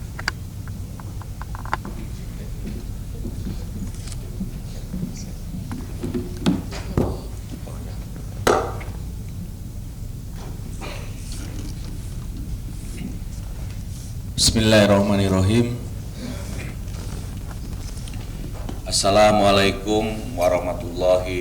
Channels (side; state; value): both; identical; correlation 1.00